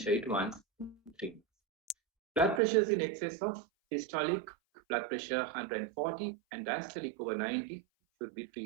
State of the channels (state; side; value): drops out; left; at 2.6 s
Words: it once in 3 months. Blood pressures in excess of systolic blood pressure 140 and diastolic over 90 should be